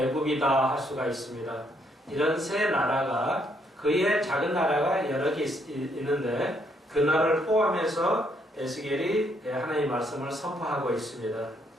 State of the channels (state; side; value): normal; both; correlation 0.72